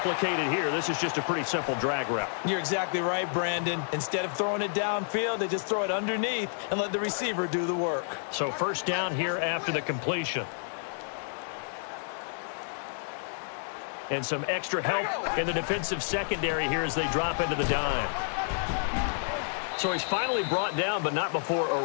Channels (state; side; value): silent; right; digital silence